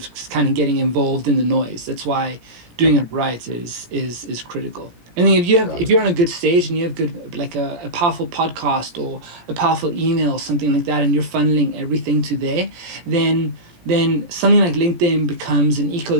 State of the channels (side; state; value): left; late; 17 ms